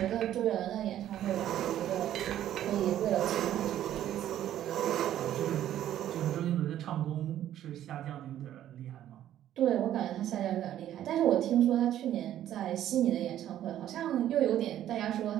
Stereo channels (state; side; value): quieter; left; 11.8 dB